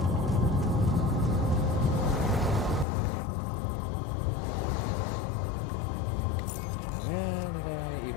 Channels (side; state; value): right; drops out; at 2.9 s